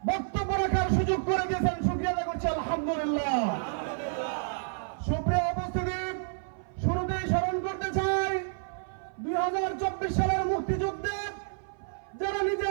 বক্তব্য রাখার সুযোগ করে দিয়েছেন। শুকরিয়া আদায় করছি আলহামদুলিল্লাহ। সুপ্রিয় উপস্থিতি, শুরুতেই স্মরণ করতে চাই 2024 সালের মুক্তিযুদ্ধে যারা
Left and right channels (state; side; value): silent; left; 55 dB below the other